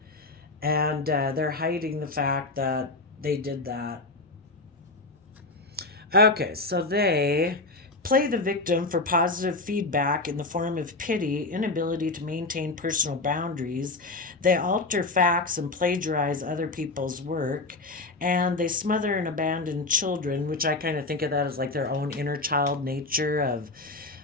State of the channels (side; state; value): right; quieter; 3.2 dB